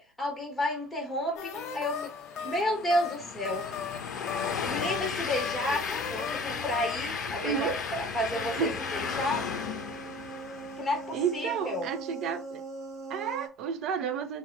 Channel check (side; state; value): both; normal; correlation 0.45